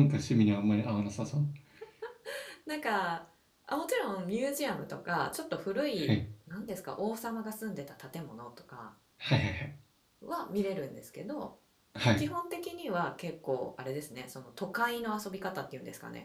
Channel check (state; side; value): identical; both; correlation 1.00